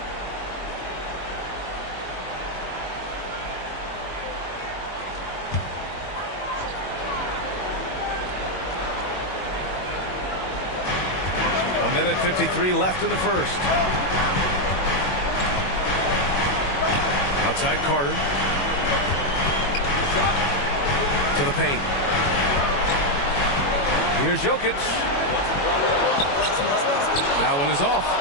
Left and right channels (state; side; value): late; right; 21 ms